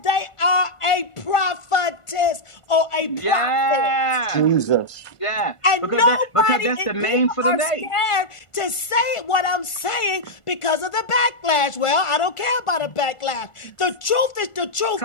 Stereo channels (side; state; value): right; late; 1.4 ms